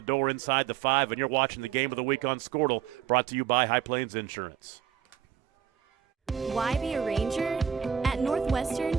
door inside the 5, and you're watching the Game of the Week on Squirtle, brought to you by High Plains Insurance. Why be a ranger? At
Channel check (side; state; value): left; quieter; 9.0 dB